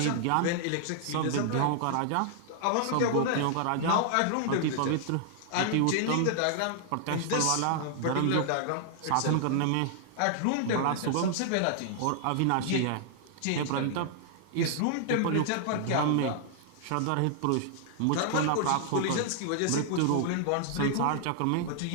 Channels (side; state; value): both; different; correlation -0.01